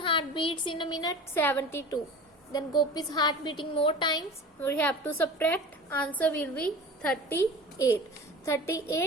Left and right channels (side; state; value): both; normal; correlation 0.37